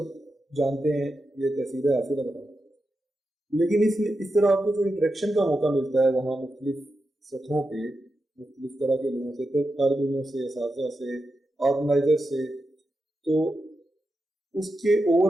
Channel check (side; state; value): both; normal; correlation 0.88